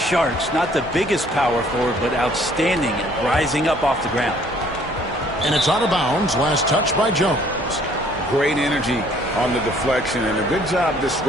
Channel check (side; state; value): both; normal; correlation 0.59